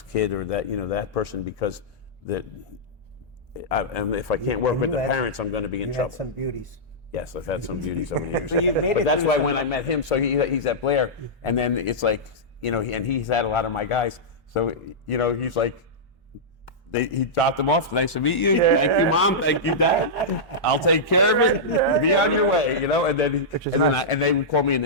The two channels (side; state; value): both; normal; correlation -0.12